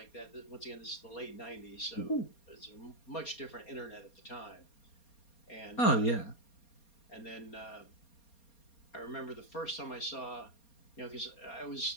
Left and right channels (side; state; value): right; late; 4.3 ms